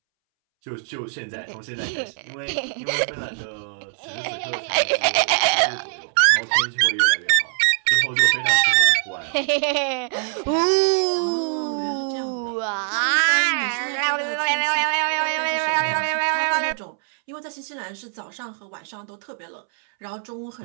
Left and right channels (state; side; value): silent; left; 64 dB below the other